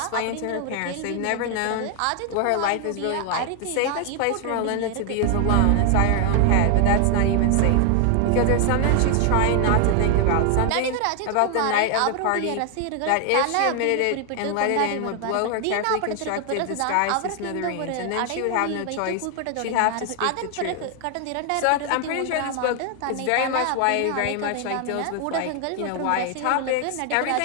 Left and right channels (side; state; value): both; different; correlation 0.00